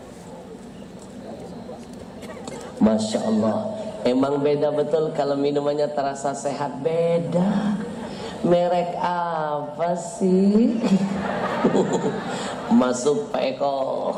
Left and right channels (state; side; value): identical; both; correlation 1.00